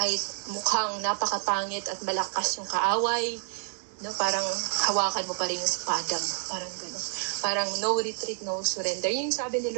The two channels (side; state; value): left; silent; digital silence